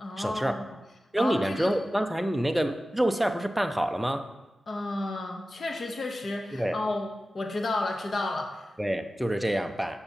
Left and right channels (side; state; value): both; normal; correlation 0.95